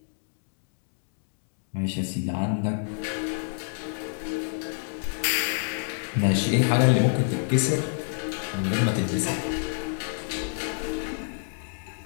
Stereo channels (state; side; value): silent; right; digital silence